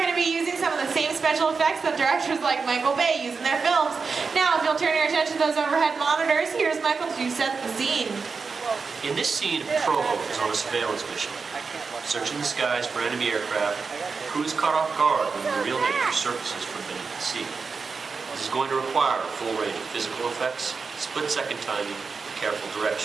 to be using some of the same special effects that directors like Michael Bay use in their films. Now, if you'll turn your attention to those overhead monitors, here's Michael to set the scene. In this scene, a patrol boat is on a surveillance mission, searching the skies for enemy aircraft. The crew is caught off guard when the real nature surfaces from beneath the sea. This is going to require a full range of physical effects, split-second timing, and careful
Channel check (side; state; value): left; quieter; 4.9 dB